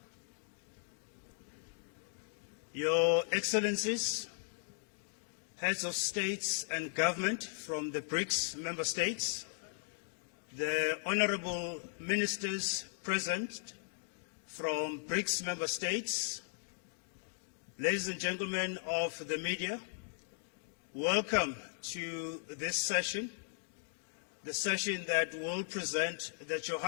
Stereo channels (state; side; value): silent; right; digital silence